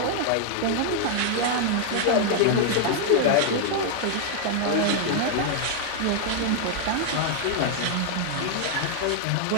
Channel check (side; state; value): both; different; correlation 0.00